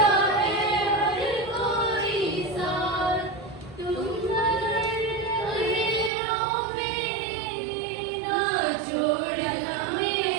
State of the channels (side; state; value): left; drops out; at 6.1 s